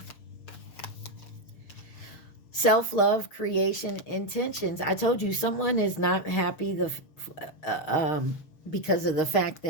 Self-love, creation, intentions. I told you someone is not happy because of the fact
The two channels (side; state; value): right; late; 6.4 ms